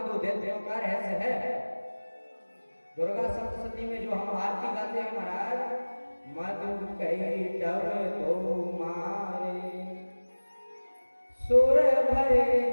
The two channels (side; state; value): both; inverted; correlation -1.00